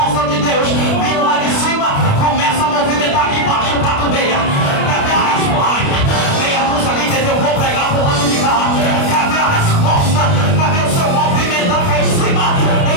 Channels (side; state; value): right; late; 29 ms